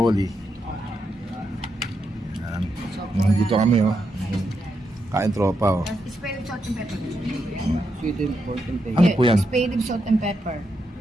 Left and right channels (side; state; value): both; normal; correlation 0.83